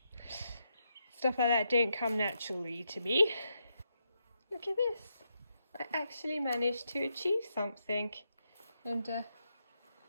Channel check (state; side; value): inverted; both; correlation -0.82